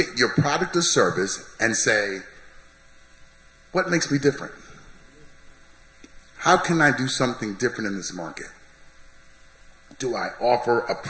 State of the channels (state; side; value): identical; both; correlation 1.00